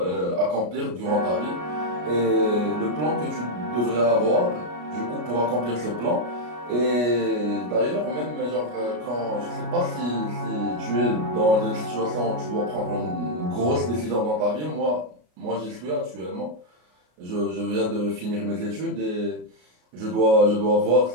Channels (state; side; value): late; left; 33 ms